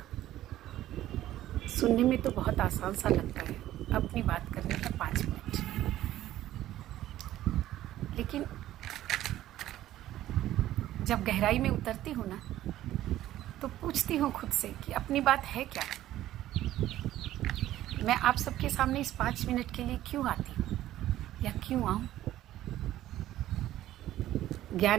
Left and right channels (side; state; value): left; quieter; 13.8 dB